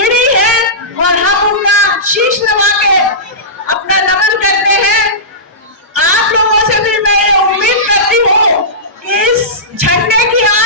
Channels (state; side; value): normal; both; correlation -0.19